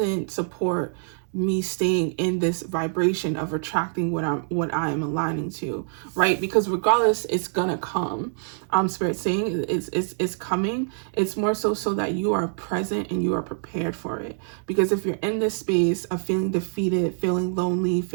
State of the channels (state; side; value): silent; left; 62 dB below the other